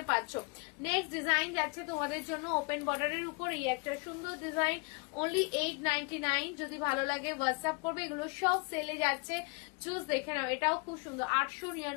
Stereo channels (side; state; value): right; quieter; 31.2 dB